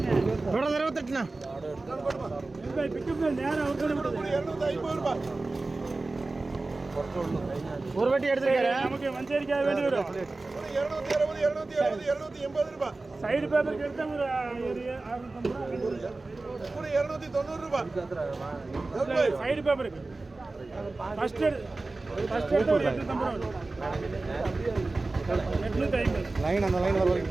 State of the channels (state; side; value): quieter; left; 3.3 dB